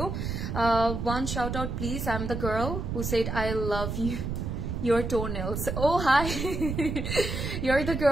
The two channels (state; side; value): noise; right; rumble, 3 dB below the sound